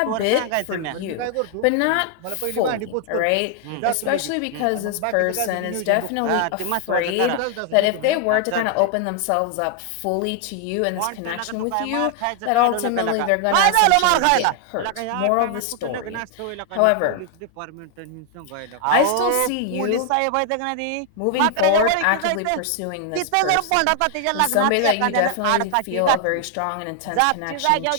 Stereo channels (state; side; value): different; both; correlation 0.00